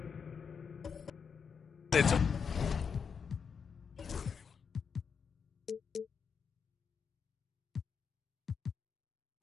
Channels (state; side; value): quieter; right; 6.3 dB